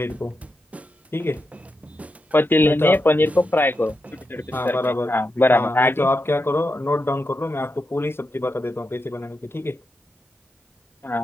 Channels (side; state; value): both; normal; correlation 0.87